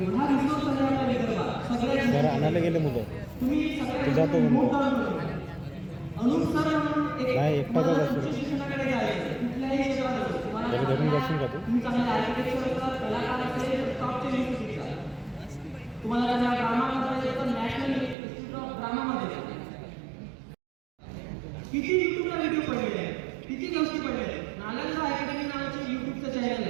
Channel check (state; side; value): drops out; left; at 18.2 s